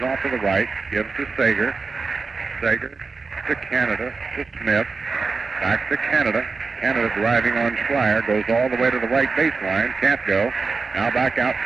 off to the right, gives to Sager. Sager to Canada, to Smith. Back to Canada. Canada driving on Schreier, goes all the way to the right baseline, can't go. Now back out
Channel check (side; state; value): left; quieter; 4.4 dB